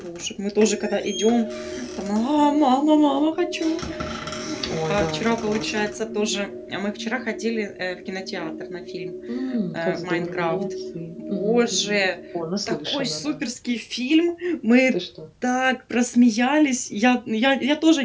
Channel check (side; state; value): both; identical; correlation 1.00